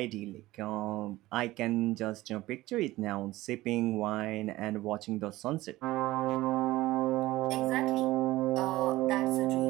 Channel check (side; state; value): left; quieter; 17.6 dB